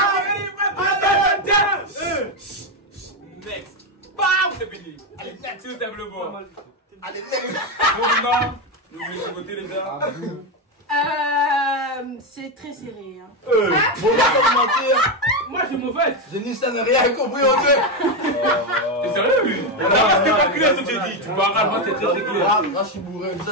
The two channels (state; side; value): normal; both; correlation 0.09